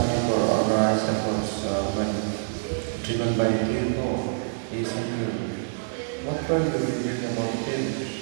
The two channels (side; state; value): left; silent; digital silence